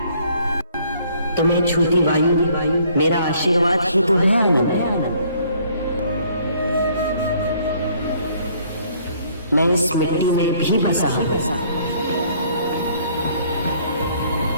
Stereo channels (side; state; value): both; inverted; correlation -0.62